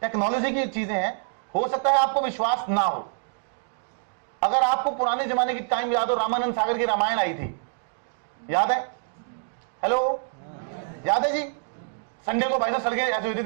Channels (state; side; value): silent; left; digital silence